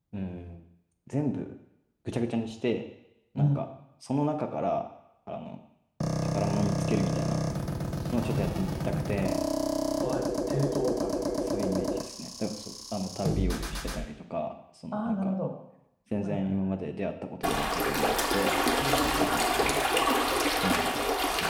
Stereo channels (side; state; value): both; identical; correlation 1.00